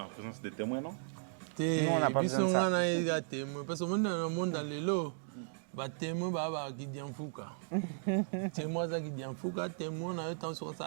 présence des témoins, non? Nous, on n'a pas besoin de ça. Parce que dans le monde, les témoins qui disent fouka. Témoins qui disent fouka, témoins na yo tant sur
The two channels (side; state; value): left; silent; digital silence